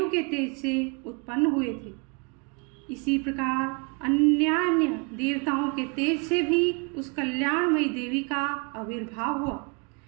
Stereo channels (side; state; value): left; quieter; 33.7 dB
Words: के तेज से उत्पन्न हुए थे। इसी प्रकार अन्यान्य देवताओं के तेज से भी उस कल्याणमयी देवी का आविर्भाव हुआ।